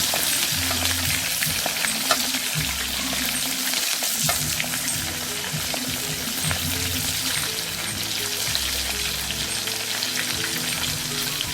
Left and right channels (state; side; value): identical; both; correlation 1.00